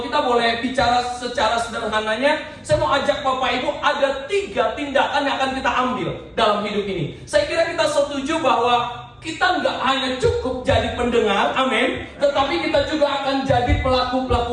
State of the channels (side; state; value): both; identical; correlation 1.00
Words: kita boleh bicara secara sederhananya, saya mau ajak Bapak Ibu ada 3 tindakan yang akan kita ambil dalam hidup ini. Saya kira kita setuju bahwa kita nggak hanya cukup jadi pendengar, amin, tetapi kita juga akan jadi